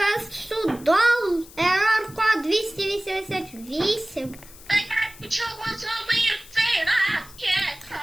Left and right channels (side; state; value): left; noise; hiss, 20 dB below the sound